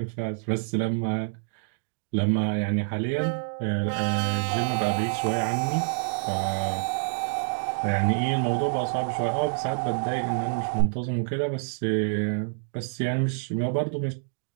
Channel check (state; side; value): silent; left; digital silence